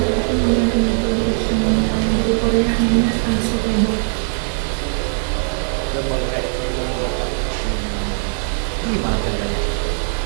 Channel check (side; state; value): left; silent; 58 dB below the other